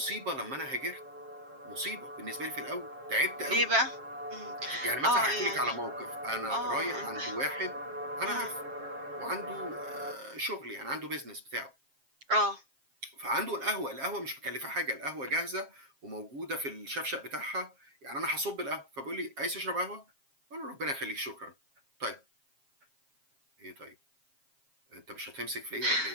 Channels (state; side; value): late; left; 7.4 ms